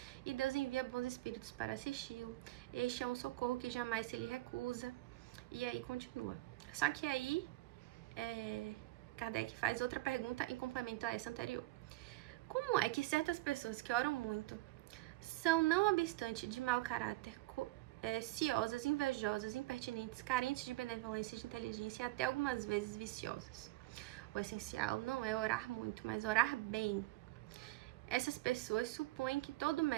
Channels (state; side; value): quieter; left; 19.1 dB